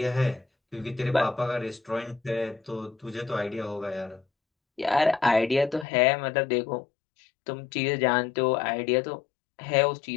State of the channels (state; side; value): drops out; right; at 5.9 s